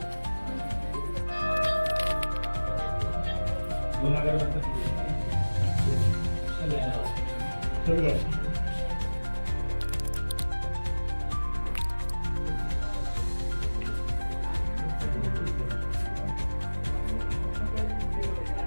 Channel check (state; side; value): inverted; both; correlation -1.00